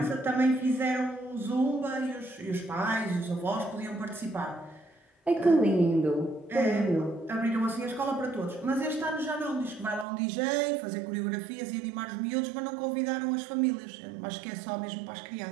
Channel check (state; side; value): drops out; left; at 10.1 s